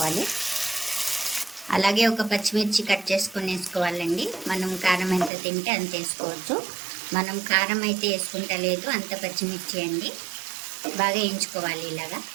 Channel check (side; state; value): left; drops out; at 5.3 s